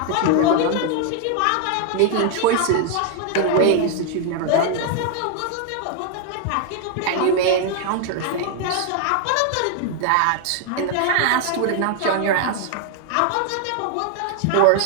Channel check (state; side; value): different; both; correlation 0.00